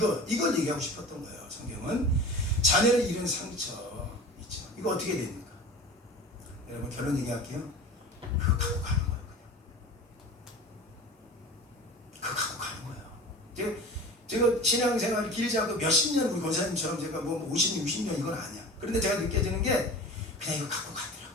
얘기하고 싶었던 거예요. 성경은 자녀를 잃은 상처 있죠. 이거 어떻게 됩니까? 여러분, 결론 얘기할게요. 그거 갖고 가는 거예요. 그거 갖고 가는 거예요. 제가 신앙생활이 길지 않고 몇십 년 우리 권사님처럼 제가 50년, 60년 이건 아니야. 그런데 제가 느껴지는 게 그냥 이거 갖고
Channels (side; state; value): both; normal; correlation 0.36